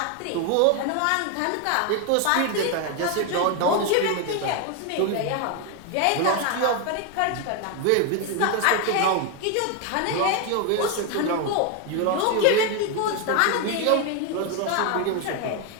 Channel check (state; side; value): different; both; correlation 0.01